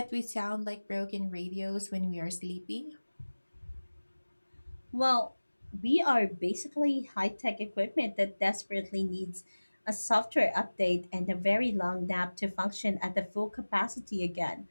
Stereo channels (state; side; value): inverted; both; correlation -1.00